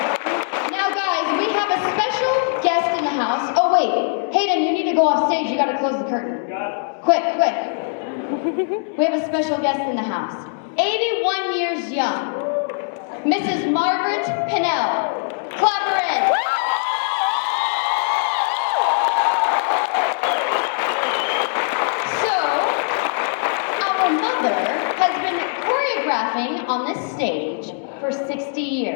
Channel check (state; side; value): silent; right; 65 dB below the other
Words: Now guys, we have a special guest in the house. Oh wait, Hayden, you need to go off stage. You gotta close the curtain. Quick, quick. We have a special guest in the house. 81 years young, Mrs. Margaret Pinnell. Clap her in. So, our mother has been choreographing on this stage for 60